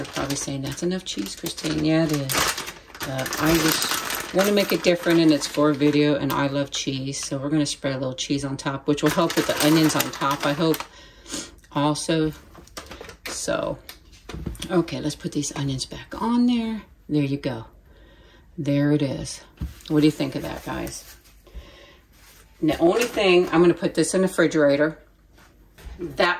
probably saying, that's enough cheese, Christine. Yeah, it is. I just want to make it different, and it's for a video, and I love cheese. So we're going to spread a little cheese on top, which will help with the onions on top, I hope, also. So, okay, let's put these onions back on there. There you go. there it is. What do you think of that, guys? And the only thing, I'm gonna put this in the refrigerator.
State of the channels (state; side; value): identical; both; correlation 1.00